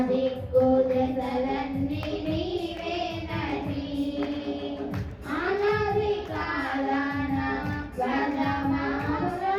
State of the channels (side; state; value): both; identical; correlation 1.00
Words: దిక్కు దశలన్నీ నీవేనని. అనాది కాలాన